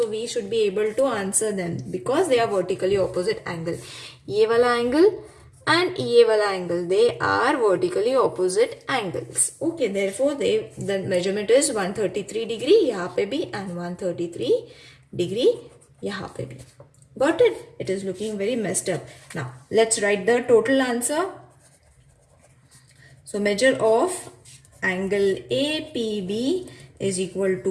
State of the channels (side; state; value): both; identical; correlation 1.00